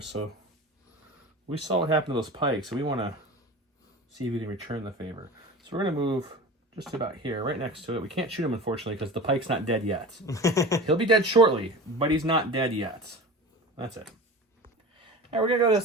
so we saw what happened to those pikes, so we want to see if we can return the favor. So we're going to move just about here, right next to it. We can't shoot him, unfortunately, because the pike's not dead yet. He'll be dead shortly, but he's not dead yet. That's it. All right, we're going to go to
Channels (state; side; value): normal; both; correlation 0.33